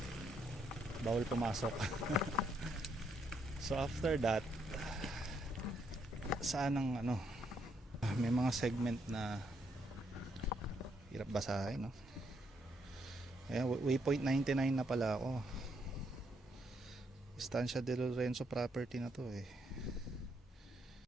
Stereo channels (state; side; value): normal; both; correlation 0.74